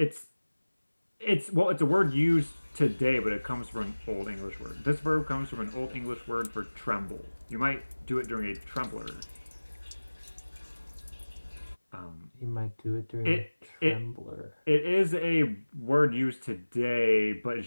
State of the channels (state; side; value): inverted; both; correlation -1.00